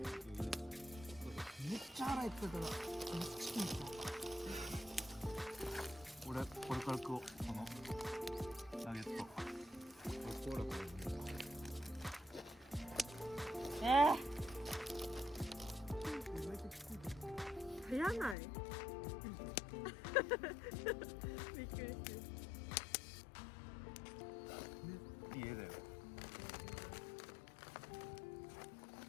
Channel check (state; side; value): drops out; right; at 18.4 s